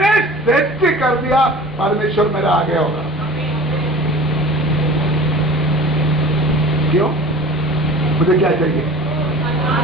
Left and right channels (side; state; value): both; normal; correlation 0.41